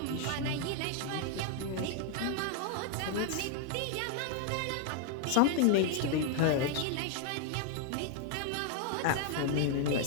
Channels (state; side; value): different; both; correlation 0.00